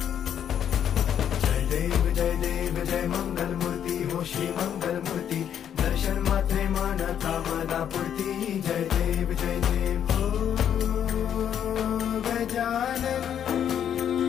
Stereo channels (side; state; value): right; quieter; 9.3 dB